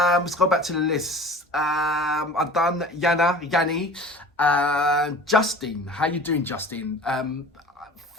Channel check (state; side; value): normal; both; correlation 0.41